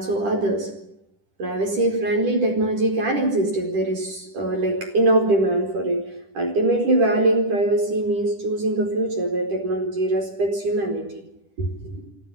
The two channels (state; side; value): late; left; 10 ms